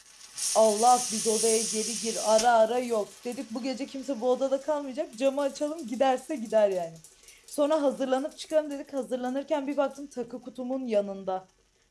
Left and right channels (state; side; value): identical; both; correlation 1.00